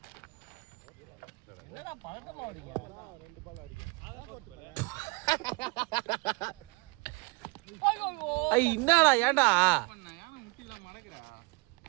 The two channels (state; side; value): quieter; left; 26.8 dB